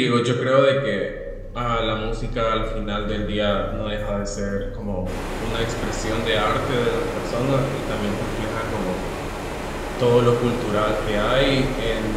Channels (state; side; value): identical; both; correlation 1.00